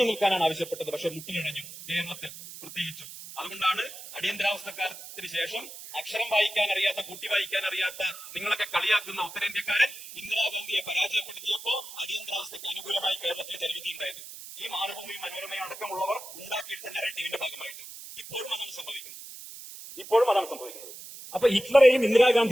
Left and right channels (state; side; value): noise; right; hiss, 13 dB below the sound